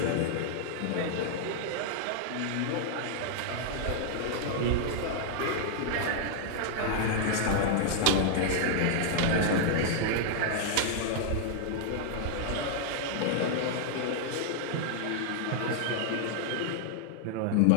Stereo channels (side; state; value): both; different; correlation -0.01